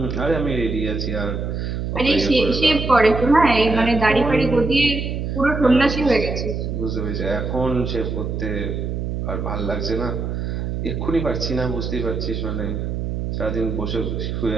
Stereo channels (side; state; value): right; noise; hum, 3 dB below the sound